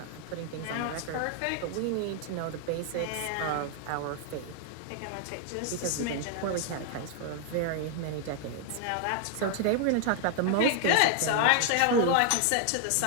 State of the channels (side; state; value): both; different; correlation 0.00